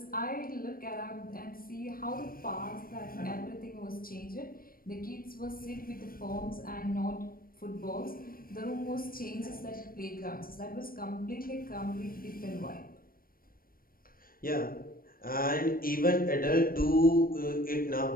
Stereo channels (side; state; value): right; late; 0.42 ms